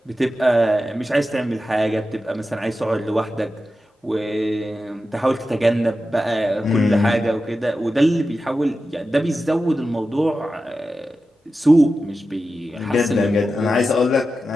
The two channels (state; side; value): normal; both; correlation 0.92